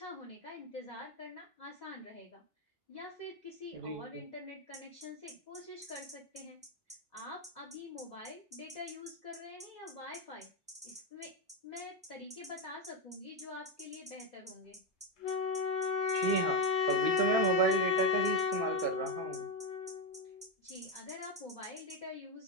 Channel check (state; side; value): normal; both; correlation 0.08